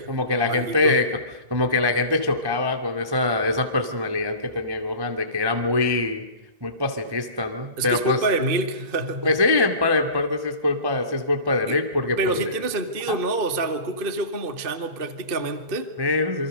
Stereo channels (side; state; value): left; late; 2.5 ms